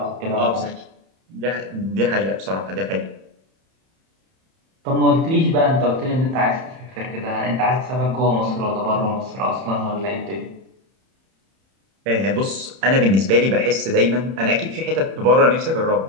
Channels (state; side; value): late; left; 31 ms